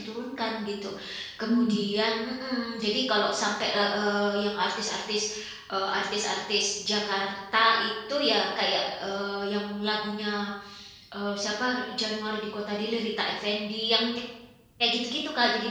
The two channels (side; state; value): both; identical; correlation 1.00